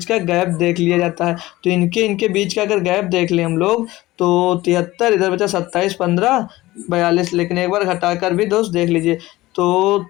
का गैप देख लिया जाता है, तो इनके बीच का अगर गैप देख लें हम लोग तो 73 इधर बचा 27, 15, 42, लेकिन एक बार घटाकर भी दोस्त देख लीजिए, तो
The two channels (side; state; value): right; quieter; 18.0 dB